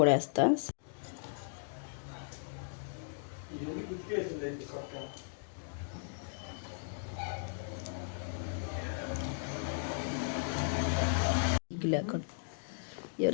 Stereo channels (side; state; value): right; silent; digital silence